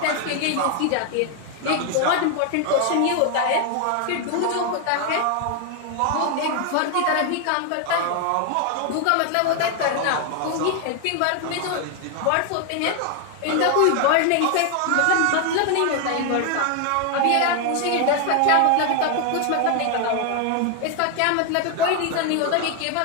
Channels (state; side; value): different; both; correlation 0.00